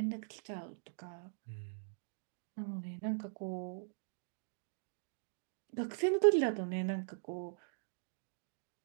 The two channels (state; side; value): silent; left; digital silence